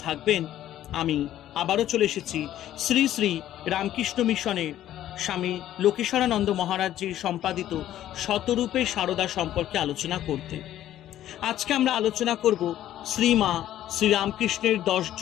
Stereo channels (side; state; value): right; quieter; 12.5 dB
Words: থাকবেন। আমি আবারও চলে এসেছি শ্রী শ্রী রামকৃষ্ণ মিশনের স্বামী লোকেশ্বরানন্দ মহারাজজির সম্পাদিত শতরূপে সারদা সম্পর্কে আলোচনা করতে। আজকে আমরা আলোচনা করব শ্রীমা শ্রীরামকৃষ্ণের 10